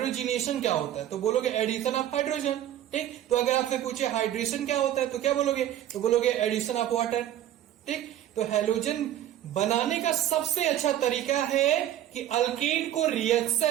क्या होता है, तो बोलोगे एडिशन ऑफ हाइड्रोजन। ठीक, तो अगर आपसे पूछे हाइड्रेशन क्या होता है, तो क्या बोलोगे, तो बोलोगे एडिशन ऑफ वाटर। ठीक, तो हेलोजन बनाने का सबसे अच्छा तरीका है कि अल्केन को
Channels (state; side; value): quieter; left; 11.9 dB